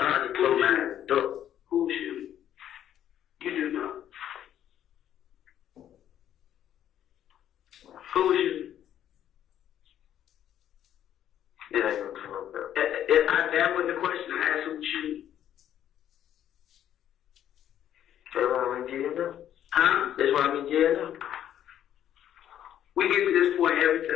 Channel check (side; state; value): right; quieter; 10.7 dB